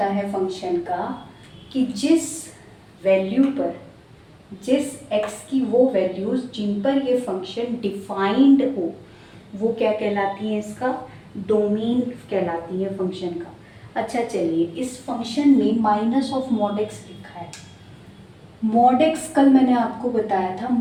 है फंक्शन का कि जिस वैल्यू पर, जिस x की वो वैल्यूज जिन पर ये फंक्शन डिफाइंड हो, वो क्या कहलाती है? इसका डोमेन कहलाती है फंक्शन का। अच्छा चलिए, इस फंक्शन में माइनस ऑफ मॉड एक्स लिखा है। मॉड एक्स कल मैंने आपको बताया था,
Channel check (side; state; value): both; identical; correlation 1.00